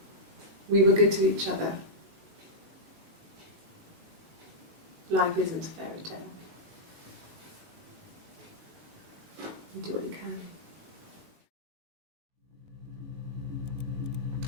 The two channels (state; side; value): late; left; 19 ms